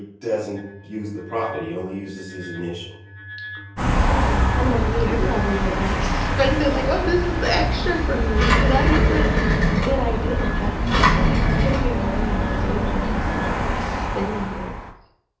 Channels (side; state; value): both; identical; correlation 1.00